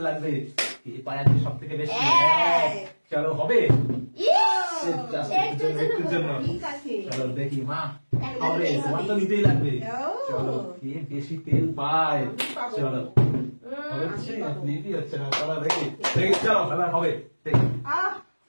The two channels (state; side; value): inverted; both; correlation -1.00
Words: লাগবে। এই পায়ে আছে সব থেকে বেশি। চলো হবে একটুর জন্য। চলো দেখি মা হবে, তোমার তো নিতেই লাগবে। চলো কে বেশি তেল পায়। চলো হচ্ছে না, ক্লিকই হচ্ছে না। চলো দেখি চলো খেলা হবে, দেখি